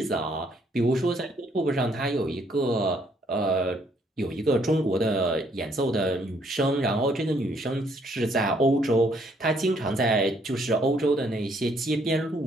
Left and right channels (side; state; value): both; normal; correlation 0.68